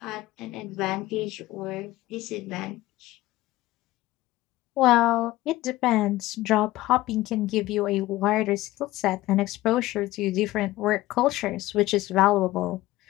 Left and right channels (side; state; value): right; quieter; 17.3 dB